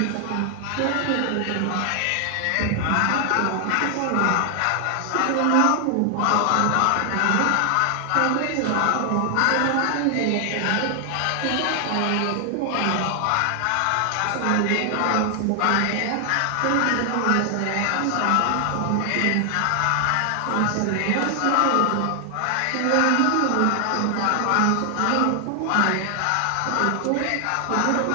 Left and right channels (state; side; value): different; both; correlation 0.00